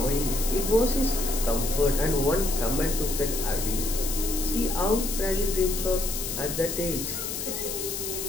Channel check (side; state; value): left; noise; hiss, 4 dB below the sound